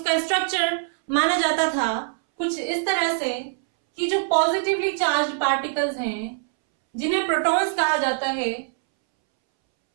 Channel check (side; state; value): left; silent; 63 dB below the other